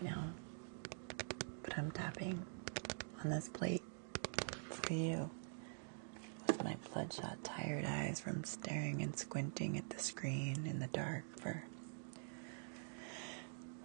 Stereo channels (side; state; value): left; silent; digital silence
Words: now. But I'm tapping on this plate for you. With my bloodshot, tired eyes from staring and squinting at the screen in the dark for